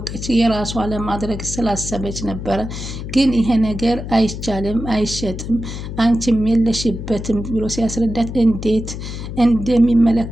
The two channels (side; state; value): left; noise; hum, 8 dB below the sound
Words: የራሷ ለማድረግ ስላሰበች ነበረ። ግን ይሄ ነገር አይቻልም፣ አይሸጥም፣ አንቺም የለሽበትም ብሎ ሲያስረዳት እንዴት